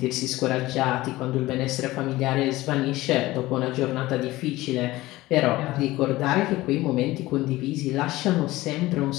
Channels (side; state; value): right; quieter; 18.2 dB